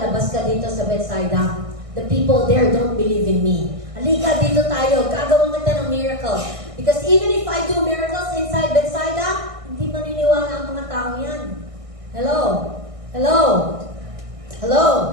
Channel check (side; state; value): left; late; 1.6 ms